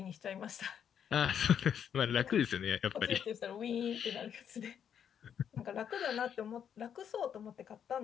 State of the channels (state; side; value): quieter; right; 8.5 dB